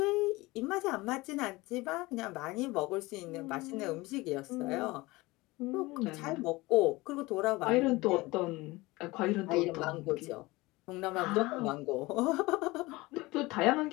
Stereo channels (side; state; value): right; quieter; 21.5 dB